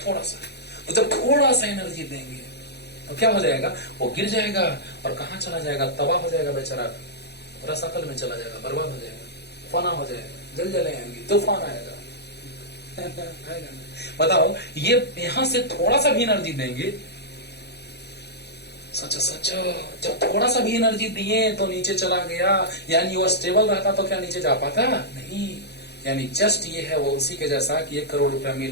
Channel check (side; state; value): right; late; 0.48 ms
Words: थोड़ा सा, तो जब थोड़ा सा एनर्जी देंगे तो क्या हो जाएगा? वो गिर जाएगा और कहां चला जाएगा? तबाह हो जाएगा बेचारा, रसातल में चला जाएगा, बर्बाद हो जाएगा, फना हो जाएगा, जलजलें आएंगी, तूफान आएगा। बताओ, ये यहां से थोड़ा सा भी एनर्जी देंगे, सोचो सोचो, जब थोड़ा सा भी एनर्जी दिए तो नीचे चला गया, यानी वो स्टेबल रहता तो क्या नीचे जा पाता? नहीं। यानी जस्ट ये है वो उसी के जैसा कि 1 करोड़ रुपया